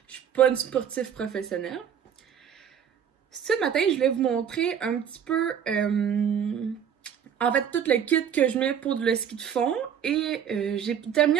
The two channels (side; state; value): left; quieter; 8.4 dB